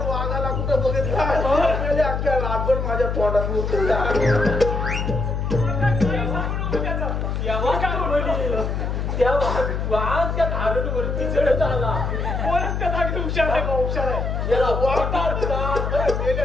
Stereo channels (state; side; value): noise; left; hum, 1 dB below the sound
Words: कुठं बघितला अख्ख्या रातभर माझ्या तोंडात मुतला. त्या वाघ त्या धारणवरती चढत आला. कोणच त्या जागी हुशार आहे हुशार आहे. याला वाघ